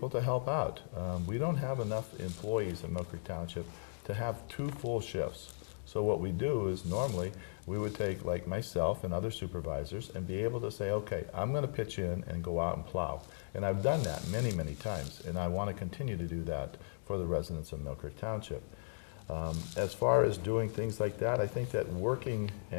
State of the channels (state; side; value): silent; right; digital silence